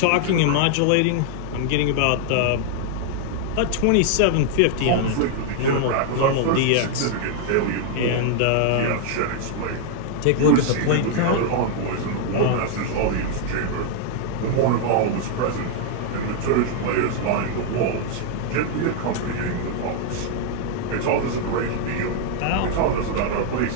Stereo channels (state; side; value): different; both; correlation 0.00